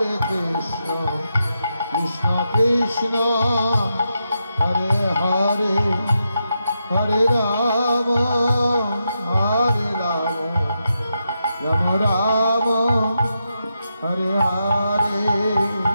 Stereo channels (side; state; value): both; inverted; correlation -0.85